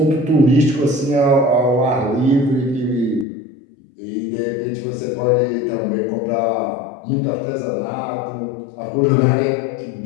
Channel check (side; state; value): right; drops out; at 3.2 s